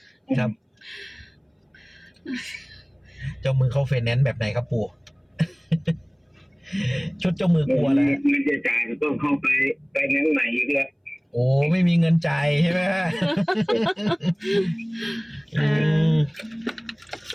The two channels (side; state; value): both; identical; correlation 1.00